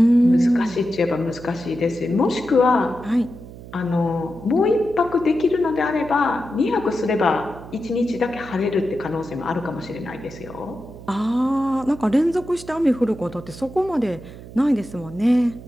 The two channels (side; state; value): right; noise; hum, 15 dB below the sound